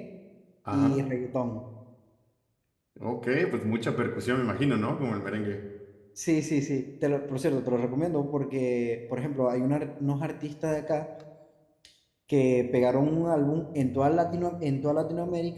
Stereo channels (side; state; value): both; identical; correlation 1.00